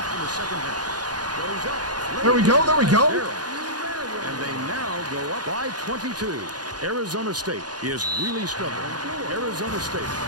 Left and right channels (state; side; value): late; left; 0.69 ms